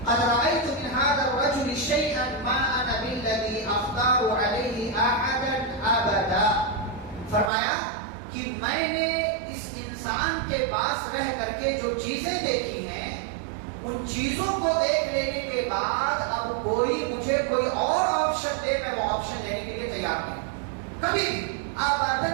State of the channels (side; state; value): left; drops out; at 7.5 s